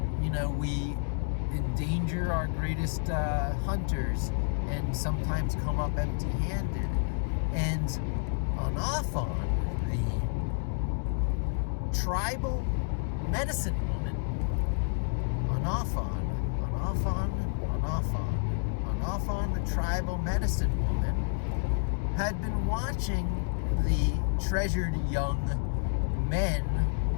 We endanger our greatest hunters and sometimes come up empty-handed. And Anaphon, the tribal medicine woman, Anaphon, the tribal medicine woman, had been watching the treasured young men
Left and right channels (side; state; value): right; silent; digital silence